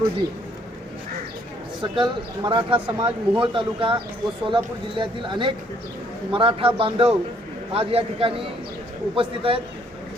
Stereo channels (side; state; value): both; normal; correlation 0.65